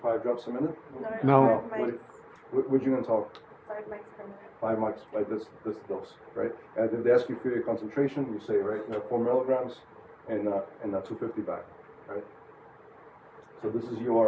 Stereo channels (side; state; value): both; identical; correlation 1.00